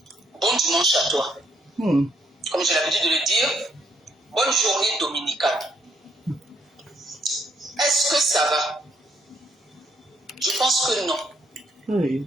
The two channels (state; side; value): normal; both; correlation 0.71